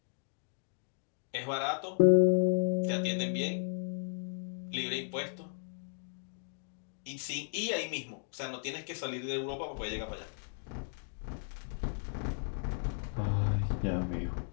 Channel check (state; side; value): silent; right; digital silence